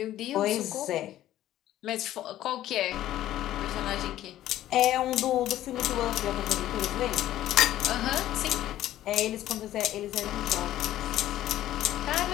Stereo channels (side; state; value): right; quieter; 13.4 dB